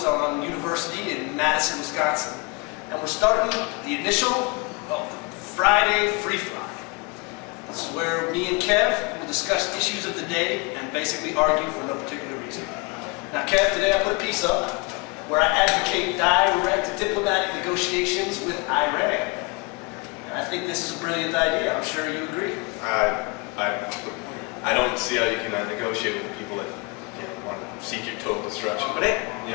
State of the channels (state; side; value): quieter; right; 29.3 dB